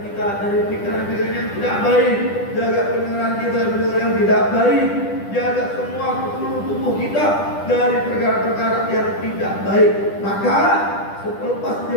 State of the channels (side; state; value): right; late; 10 ms